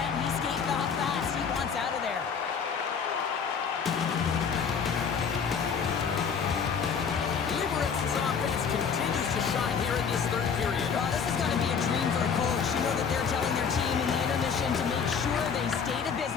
He's skating off fast. He wants out of there. Liberec's offense continues to shine here in this third period. Oh, this is going to be a dream for a coach. You know that they're telling their team in the intermission to make sure they stay to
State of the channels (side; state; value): right; quieter; 6.4 dB